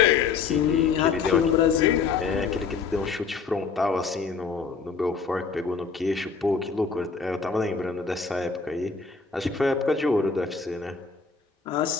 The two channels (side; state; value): right; quieter; 5.3 dB